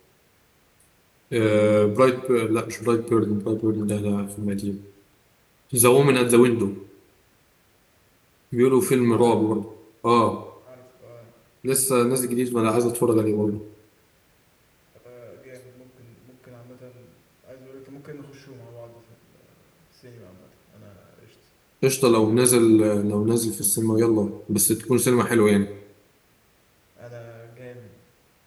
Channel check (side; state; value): both; identical; correlation 1.00